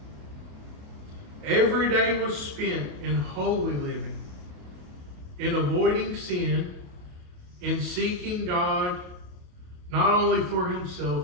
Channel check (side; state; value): left; late; 28 ms